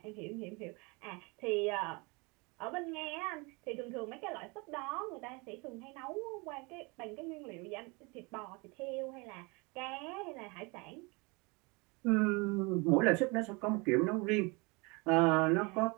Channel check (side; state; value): left; quieter; 28.3 dB